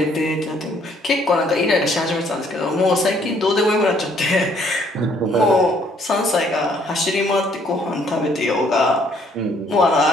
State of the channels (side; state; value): both; normal; correlation 0.65